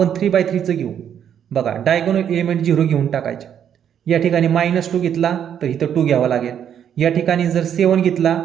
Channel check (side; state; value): left; quieter; 9.0 dB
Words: 3x3चं घेऊ बघा, डायगोनल एलिमेंट 0 घेऊन टाकायचे. या ठिकाणी -2 घेतला तर इथं 2 घ्यावा लागेल. या ठिकाणी जर 7 घेतला